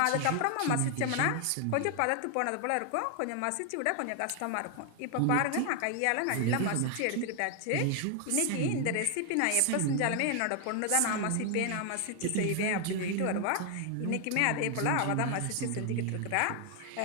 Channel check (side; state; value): both; different; correlation 0.00